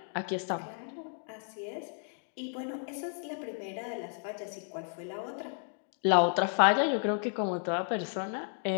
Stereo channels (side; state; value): right; silent; 56 dB below the other